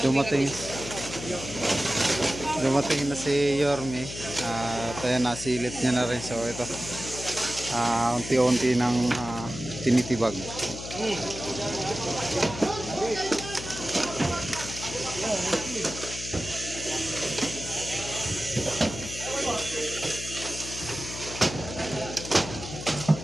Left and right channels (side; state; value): left; noise; hum, 10 dB below the sound